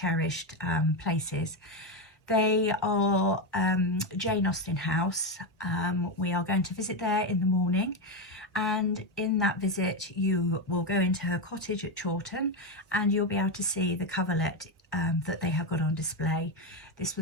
places. They are Jane Austen House. We are going to visit there in the morning, and in that visit you will go into her cottage at Chawton, and you'll be able to see the coverlet that they have got on display. This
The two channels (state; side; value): normal; both; correlation 0.10